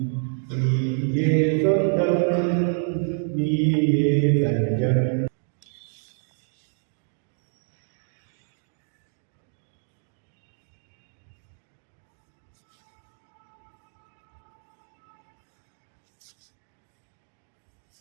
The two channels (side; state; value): left; silent; digital silence